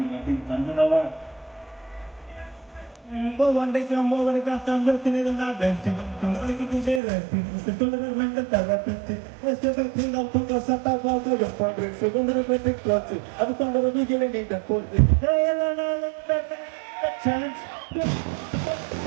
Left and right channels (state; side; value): drops out; left; at 7.0 s